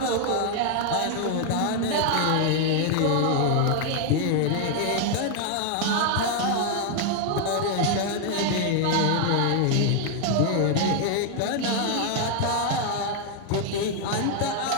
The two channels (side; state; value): both; different; correlation 0.00